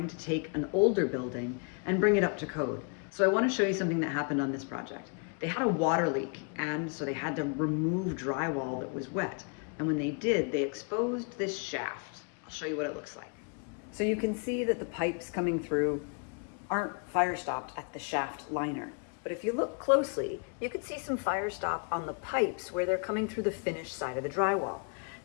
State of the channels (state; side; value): quieter; right; 38.3 dB